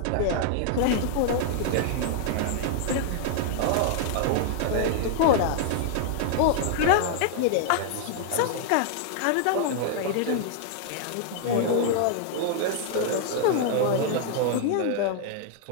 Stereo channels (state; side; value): different; both; correlation -0.01